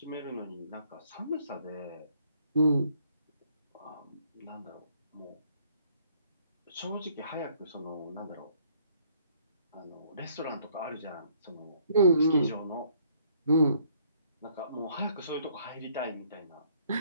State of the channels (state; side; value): inverted; both; correlation -0.64